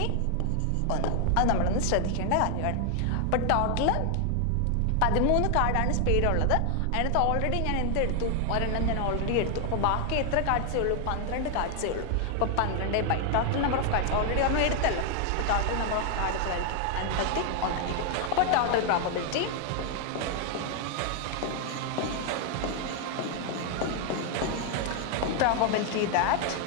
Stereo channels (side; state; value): both; different; correlation 0.00